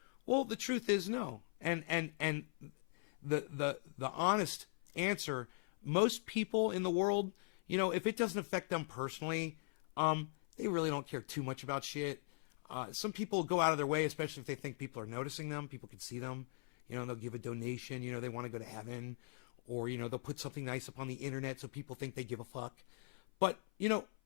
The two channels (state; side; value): silent; right; 51 dB below the other